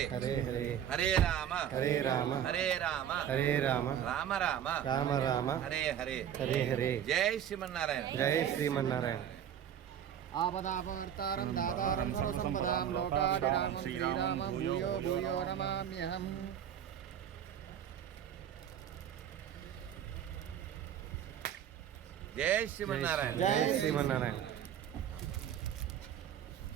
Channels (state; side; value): quieter; left; 9.7 dB